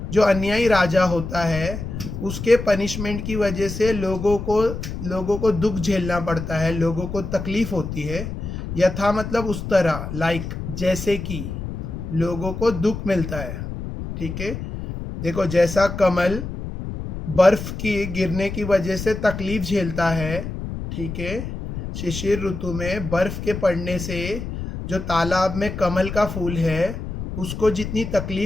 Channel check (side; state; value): left; noise; rumble, 7 dB below the sound